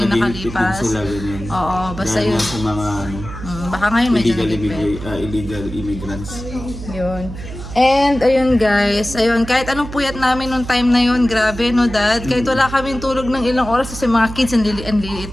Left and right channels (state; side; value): noise; right; hum, 11 dB below the sound